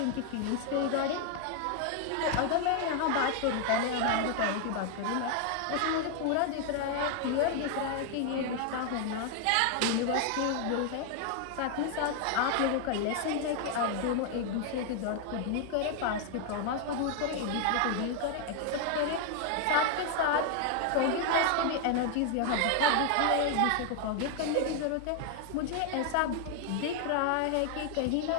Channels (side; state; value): both; different; correlation 0.00